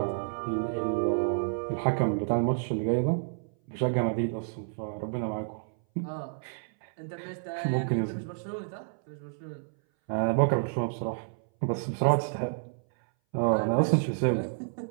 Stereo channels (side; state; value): left; silent; 58 dB below the other